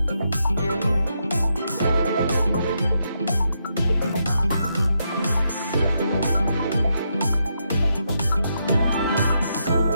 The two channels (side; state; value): both; inverted; correlation -0.81